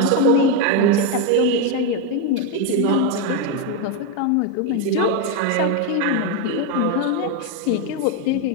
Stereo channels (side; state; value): both; different; correlation 0.02